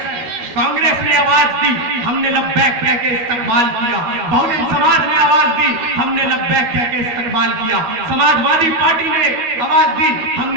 कांग्रेस ने आवाज दी, हमने लब्बैक कह के इस्तकबाल किया, बहुजन समाज ने आवाज दी, हमने लब्बैक कह के इस्तकबाल किया, समाजवादी पार्टी ने आवाज दी,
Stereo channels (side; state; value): left; late; 12 ms